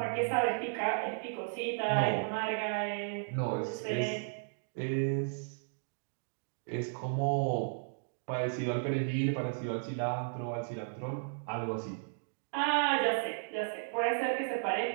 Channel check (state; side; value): silent; left; digital silence